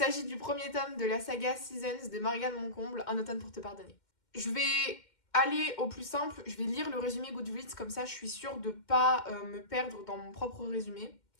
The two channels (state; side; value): late; right; 2.1 ms